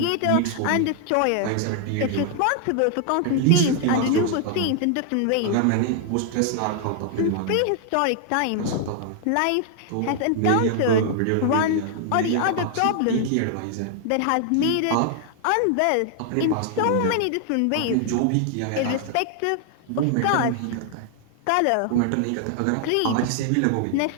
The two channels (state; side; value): different; both; correlation 0.00